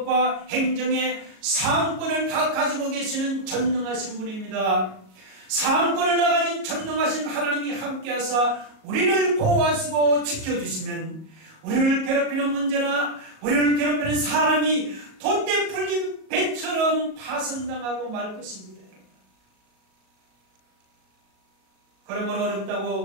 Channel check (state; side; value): late; left; 37 ms